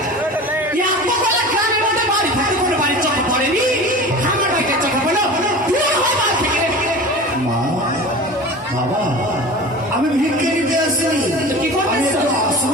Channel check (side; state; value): both; normal; correlation 0.35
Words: গ্রামের মধ্যে বাড়ি থাকে, কোনো বাড়ির চোখে পড়েনি। আমার বাড়িতে চোখে পড়লো। মা, বাবা, আমি ভিক্ষে নিতে আসিনি। কি করবে?